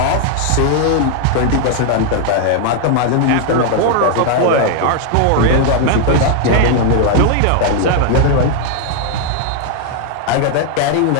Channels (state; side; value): different; both; correlation 0.00